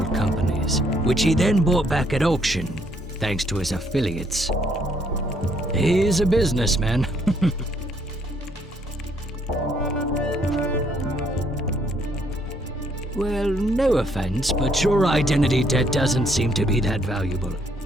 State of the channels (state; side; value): normal; both; correlation 0.69